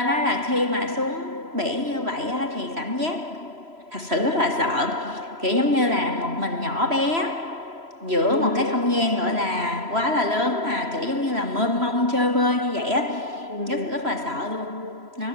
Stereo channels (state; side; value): late; left; 3.0 ms